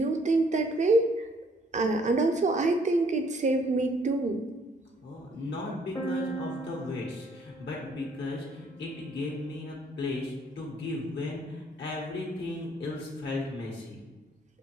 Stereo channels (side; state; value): both; normal; correlation 0.64